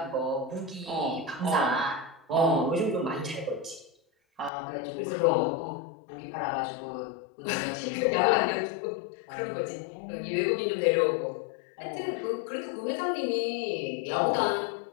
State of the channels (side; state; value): right; drops out; at 4.5 s